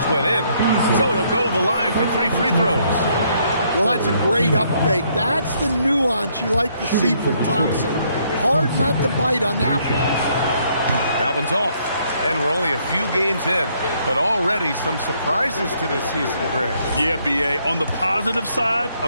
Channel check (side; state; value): both; inverted; correlation -0.69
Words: went in. So he'll go to the line for 3 free throws. Well, that's a great up fake. That's the nuance you like to see from Thompson. Hard not to bite on that one. That one's off. And we're only a few games in, but already some surprises to this season, Grant. Yeah, B.A. On the positive side,